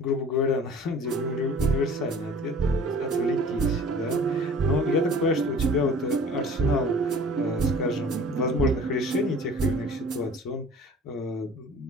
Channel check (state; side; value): normal; both; correlation 0.46